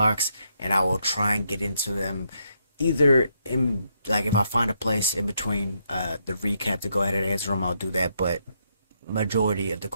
and I will try and get into them either in, like, if I find a place in between the recap to go ahead and answer them, I'll do that. But majority of the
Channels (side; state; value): both; inverted; correlation -0.77